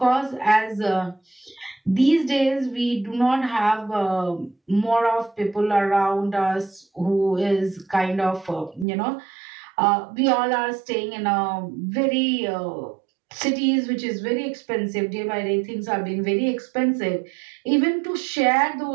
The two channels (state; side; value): drops out; left; at 8.8 s